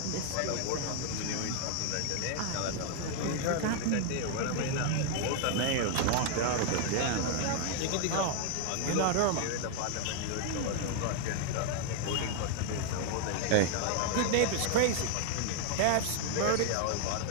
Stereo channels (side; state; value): both; different; correlation 0.00